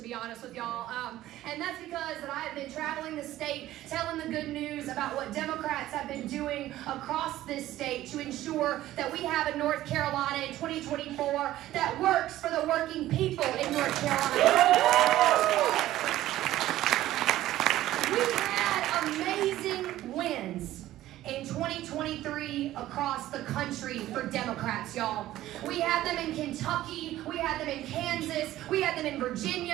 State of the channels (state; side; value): quieter; left; 14.6 dB